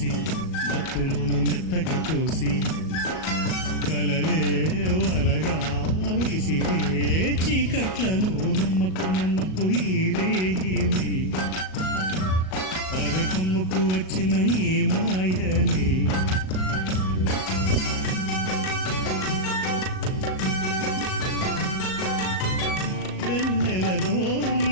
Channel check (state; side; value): late; right; 38 ms